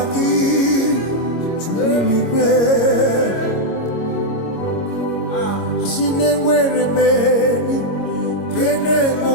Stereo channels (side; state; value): right; late; 26 ms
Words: gị juru eluigwe. Si na-enwere meni kene